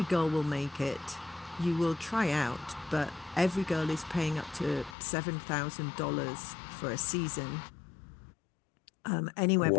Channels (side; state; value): right; drops out; at 5.0 s